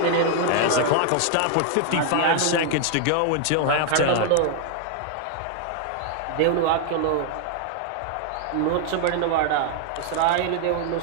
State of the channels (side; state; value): both; different; correlation 0.00